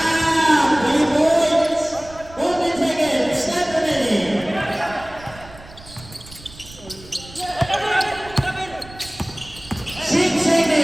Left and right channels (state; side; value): noise; right; rumble, 19 dB below the sound